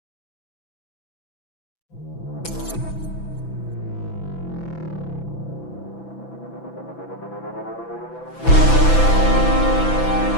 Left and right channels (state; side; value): late; right; 6.0 ms